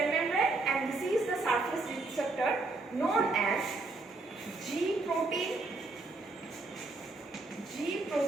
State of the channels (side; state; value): left; quieter; 3.4 dB